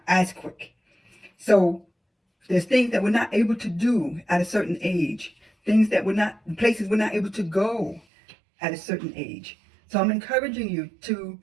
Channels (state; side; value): drops out; left; at 8.0 s